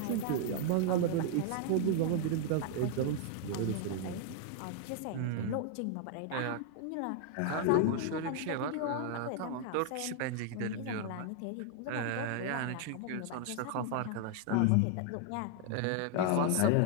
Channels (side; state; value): both; different; correlation 0.00